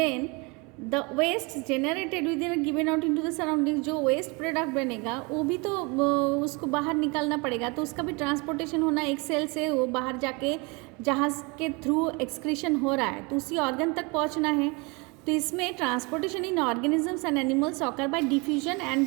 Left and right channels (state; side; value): quieter; left; 28.8 dB